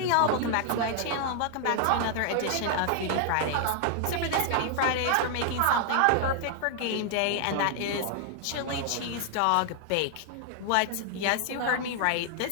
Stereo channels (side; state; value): both; different; correlation 0.00